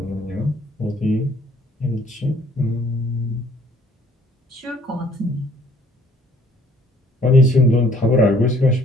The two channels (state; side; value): normal; both; correlation 0.60